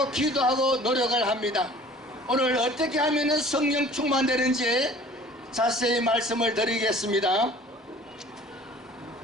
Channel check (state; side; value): normal; both; correlation 0.48